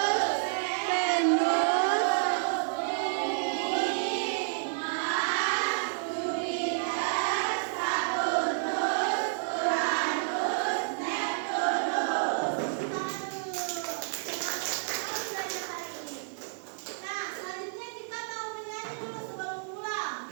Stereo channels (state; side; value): silent; left; 58 dB below the other